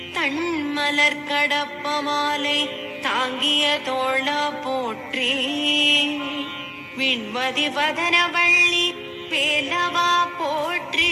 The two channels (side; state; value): both; identical; correlation 1.00